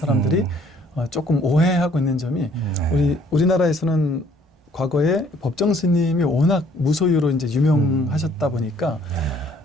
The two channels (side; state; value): both; normal; correlation 0.61